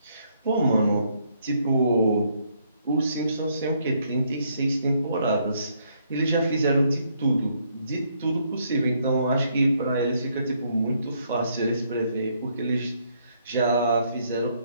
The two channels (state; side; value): inverted; both; correlation -0.71